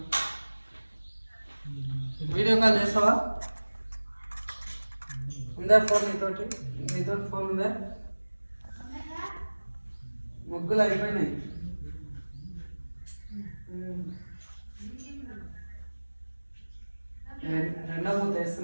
వీడియో కాల్ చేస్తావా? ఉందా ఫోన్ నీతో ఫోన్ ఉందా? ముగ్గులు అయిపోయినాయి. రెండో మూత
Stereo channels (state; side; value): inverted; both; correlation -1.00